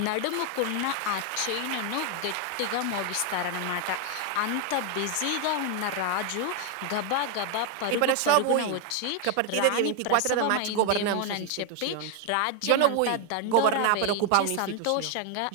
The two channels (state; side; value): different; both; correlation 0.01